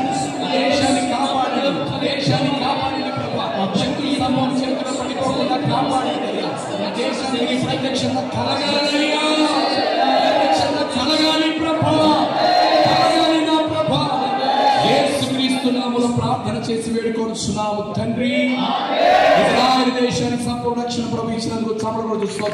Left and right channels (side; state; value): both; identical; correlation 1.00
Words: దేశాన్ని కాపాడండి, దేశాన్ని కాపాడండి ప్రభా. శక్తుల సమూహం చేతుల పడిపోకుండా కాపాడండి. దేశానికి ప్రత్యక్షంగా కలగాలయ్యా, ప్రత్యక్షంగా కలగాలి ప్రభా, కలగాలి నా ప్రభా. యేసుక్రీస్తు నామములో ప్రార్థన చేసి వేడుకొనుచున్నాము తండ్రి. ఇజ్రాయెల్ దేశానికి సంపూర్ణ రక్షణ ప్రభు ఇచ్చినందుకు చమరగొడు